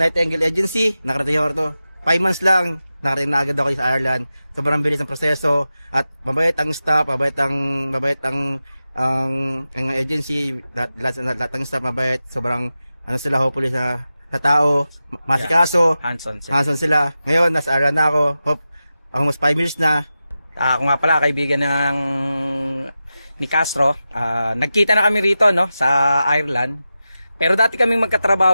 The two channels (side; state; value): both; inverted; correlation -0.93